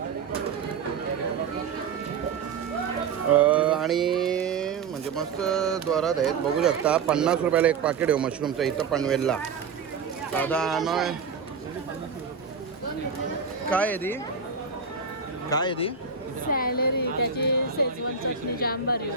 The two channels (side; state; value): left; quieter; 5.8 dB